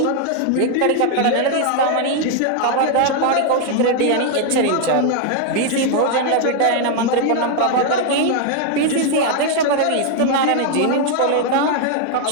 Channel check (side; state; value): both; different; correlation 0.00